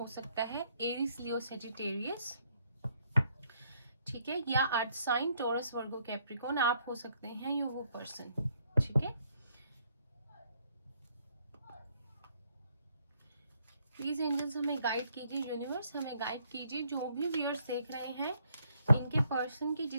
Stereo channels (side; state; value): both; inverted; correlation -0.70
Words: सकता है, एरिस, लियो, सेजिटेरियस। ठीक है, या अर्थ साइन, टॉरस, वर्गो, कैप्रिकॉर्न आप हो सकते हैं, या वो पर्सन। ठीक है, प्लीज एंजल्स हमें गाइड कीजिए, यूनिवर्स हमें गाइड कीजिए। जो भी व्यूअर्स देख रहे हैं, इनके पर्सन की